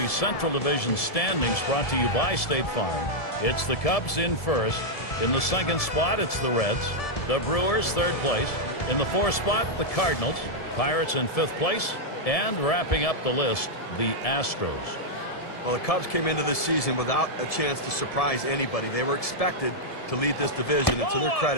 Central Division standings brought to you by State Farm. It's the Cubs in first. In the second spot, it's the Reds. The Brewers, third place. In the fourth spot, the Cardinals. Pirates in fifth place. And wrapping up the list, the Astros. Well, the Cubs came into this season without a chance to surprise anybody. They were expected to lead this division, and to their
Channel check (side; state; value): right; late; 1.7 ms